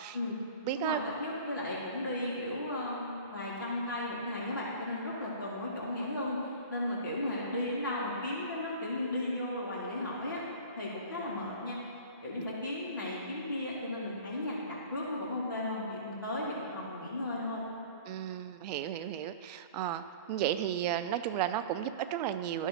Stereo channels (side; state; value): both; inverted; correlation -0.40